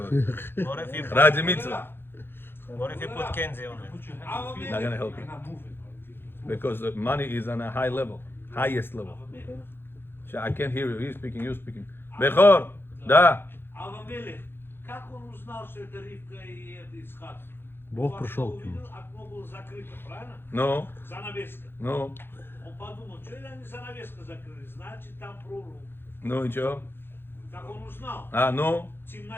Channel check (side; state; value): right; late; 0.10 ms